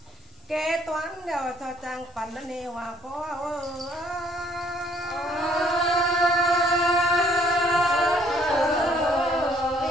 kế toán đeo cho trang phần nó nên hòa có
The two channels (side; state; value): both; normal; correlation 0.63